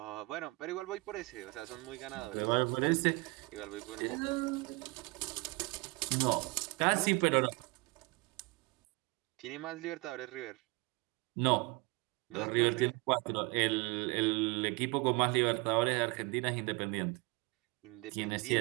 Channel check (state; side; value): quieter; left; 25.5 dB